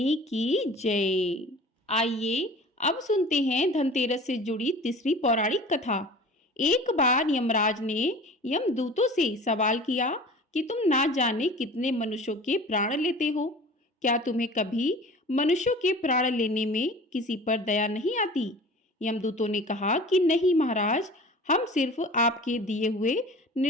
की जय। आइए अब सुनते हैं धनतेरस से जुड़ी तीसरी पौराणिक कथा। एक बार यमराज ने यमदूतों से सवाल किया कि तुम ना जाने कितने मनुष्यों के प्राण लेते हो, क्या तुम्हें कभी मनुष्यों के प्राण लेने में किसी पर दया नहीं आती? यमदूतों ने कहा कि नहीं महाराज, हम सिर्फ आपके दिए हुए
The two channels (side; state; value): both; normal; correlation 0.41